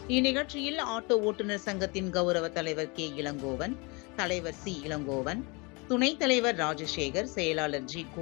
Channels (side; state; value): right; quieter; 28.8 dB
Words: இந்நிகழ்ச்சியில் ஆட்டோ ஓட்டுநர் சங்கத்தின் கௌரவ தலைவர் கே. இளங்கோவன், தலைவர் சி. இளங்கோவன், துணைத் தலைவர் ராஜசேகர், செயலாளர் ஜி.